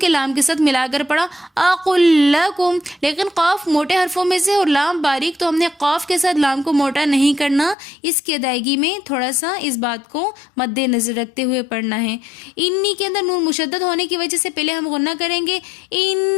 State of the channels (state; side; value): drops out; right; at 7.8 s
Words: लाम के साथ मिलाकर पढ़ा अकुल लकुम, लेकिन काफ मोटे हर्फों में से और लाम बारीक, तो हमने काफ के साथ लाम को मोटा नहीं करना। इसकी अदायगी में थोड़ा सा इस बात को मद्देनजर रखते हुए पढ़ना है। इन्नी के अंदर नून मुशद्दद होने की वजह से पहले हम गुन्ना करेंगे